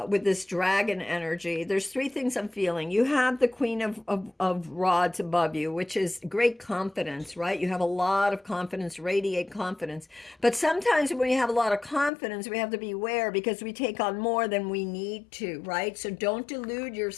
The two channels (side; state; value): right; drops out; at 12.1 s